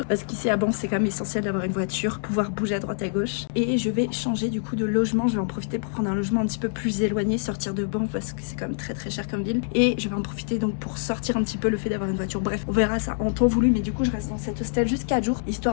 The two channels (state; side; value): silent; right; digital silence